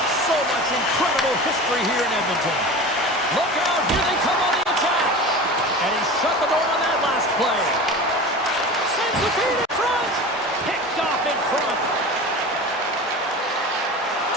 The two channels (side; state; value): both; normal; correlation 0.33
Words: So much incredible history here in Edmonton. Look out, here they come on the attack. And he shut the door on that last play. Sends the feed in front. Picked off in front.